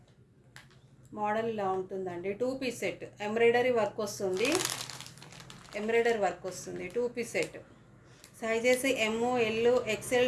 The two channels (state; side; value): identical; both; correlation 1.00